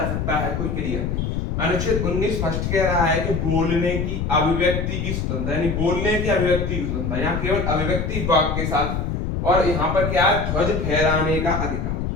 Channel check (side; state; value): left; noise; rumble, 1 dB below the sound